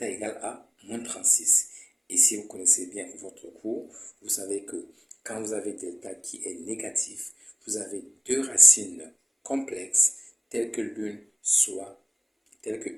égale à moins 36. Et si vous connaissez bien votre cours, vous savez que quand vous avez delta qui est négatif, vous avez deux racines complexes telles qu'une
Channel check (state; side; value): identical; both; correlation 1.00